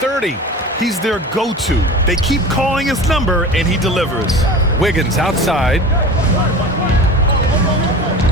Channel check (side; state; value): both; normal; correlation 0.35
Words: He's their go-to. They keep calling his number, and he delivers. Wiggins outside.